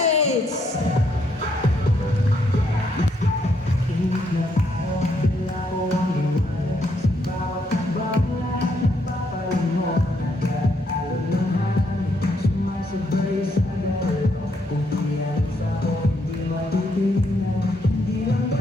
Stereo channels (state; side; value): normal; both; correlation 0.74